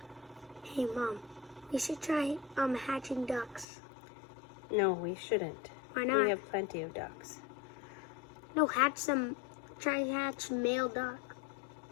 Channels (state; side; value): drops out; right; at 3.7 s